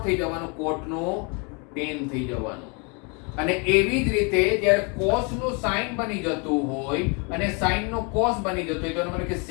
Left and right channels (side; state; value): right; quieter; 33.2 dB